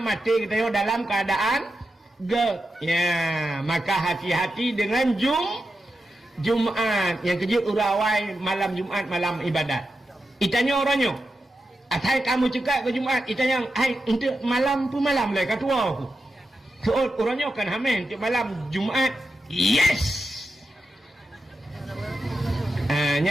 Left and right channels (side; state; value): both; normal; correlation 0.89